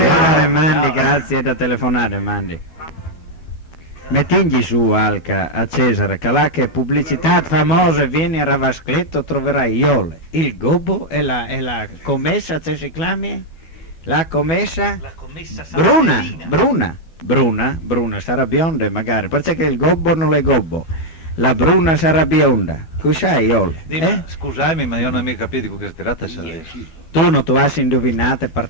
mandi, grazie da telefonare, mandi. Mettigli su Alca a Cesare, che là che pubblicità famosa, vieni a Ravascletto, troverai Iole, il gobbo e la commessa, se si chiami? La commessa? La commessa Bruna, sarà bionda magari, perché il gobbo non è gobbo, la bruna sarà bionda, tu sai Iole? Scusami, ma io non ho mica capito di che si tratta. Tu non tu hai indovinato e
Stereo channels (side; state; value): right; late; 12 ms